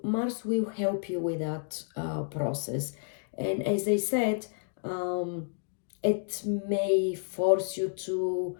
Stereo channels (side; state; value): right; silent; digital silence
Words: will help you with that process, and as I said, um, it may force you to